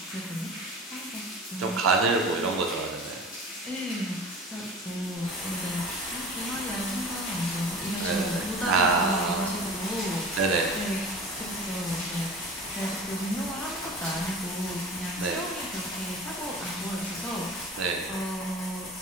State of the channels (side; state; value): both; normal; correlation 0.37